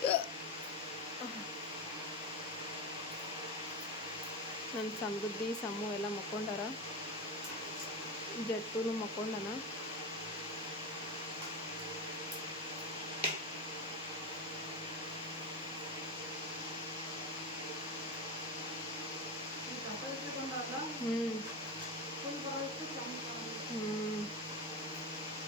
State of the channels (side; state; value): both; normal; correlation 0.17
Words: ನನ್ನ ಸಮೃದ್ಧಿ ಸಮೂ ಎಲ್ಲ ಮಕ್ಕೊಂಡಾರ, ಜಟ್ಟುನು ಮಕ್ಕೊಂಡನ.